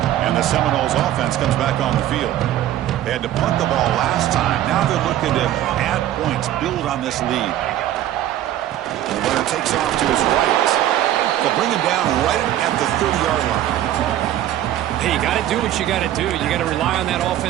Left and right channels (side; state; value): left; quieter; 12.6 dB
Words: The Seminoles offense comes back on the field. They had to punt the ball last time. Now they're looking to add points, build on this lead. And the runner takes off to his right. They'll bring him down right at the 30-yard line. Hey, you got to do what you got to do. You got to rely on that